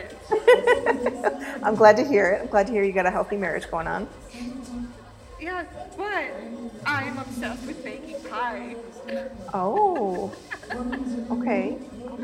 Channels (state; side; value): identical; both; correlation 1.00